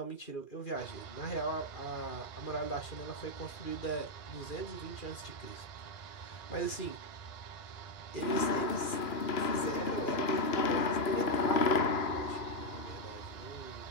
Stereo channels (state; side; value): late; right; 2.4 ms